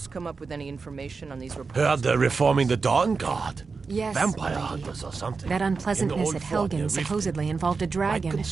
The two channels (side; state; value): left; quieter; 4.6 dB